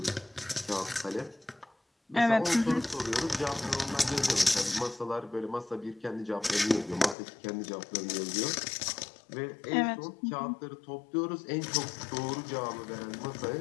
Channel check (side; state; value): right; drops out; at 7.2 s